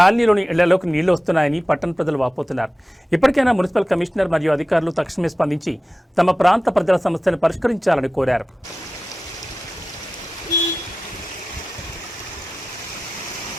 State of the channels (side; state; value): both; normal; correlation 0.95